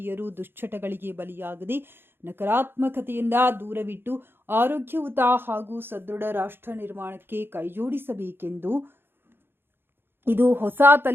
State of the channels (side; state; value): left; late; 0.10 ms